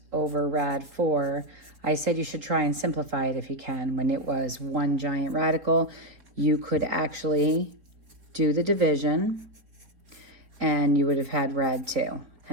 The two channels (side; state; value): left; late; 4.1 ms